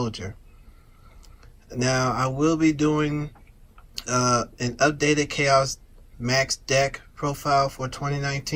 Now I will be doing an updated Chaos Max deck profile for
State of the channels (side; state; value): both; identical; correlation 1.00